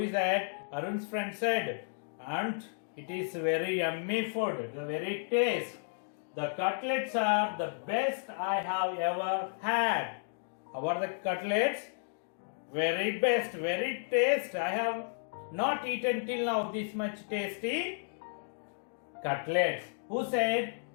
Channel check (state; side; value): silent; right; digital silence